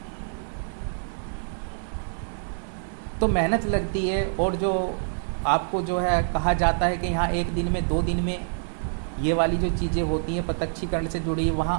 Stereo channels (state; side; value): silent; left; 61 dB below the other